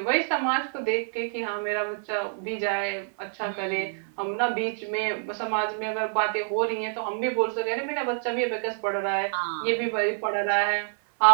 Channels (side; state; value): left; silent; 56 dB below the other